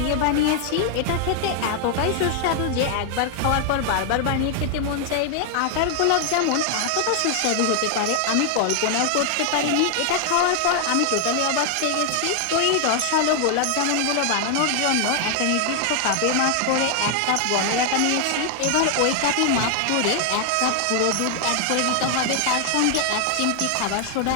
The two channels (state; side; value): different; both; correlation 0.00